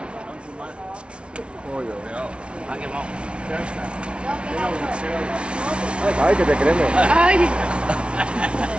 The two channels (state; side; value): late; left; 0.059 ms